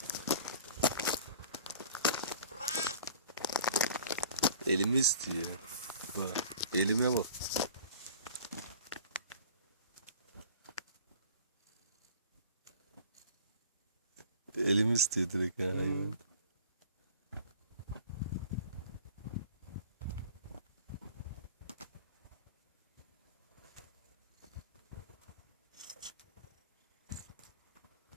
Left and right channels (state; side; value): inverted; both; correlation -0.45